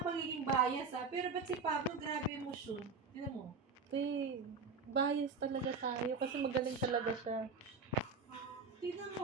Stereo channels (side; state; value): left; quieter; 4.7 dB